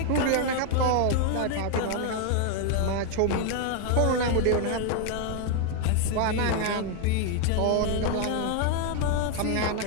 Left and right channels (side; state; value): both; different; correlation 0.00